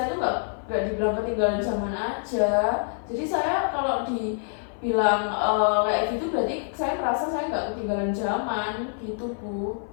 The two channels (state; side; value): silent; right; 56 dB below the other